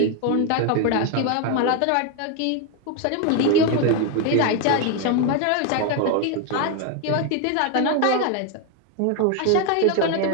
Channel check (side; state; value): both; different; correlation 0.01